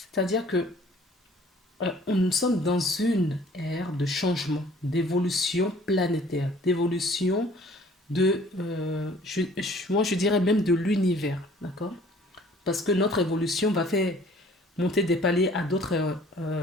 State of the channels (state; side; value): normal; both; correlation 0.54